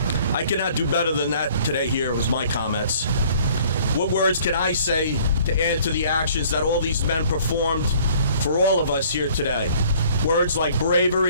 I cannot do better than that today here with my comments. What words can I say to add to the actions that all these men performed for all of us here today? Words like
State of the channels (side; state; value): both; inverted; correlation -0.56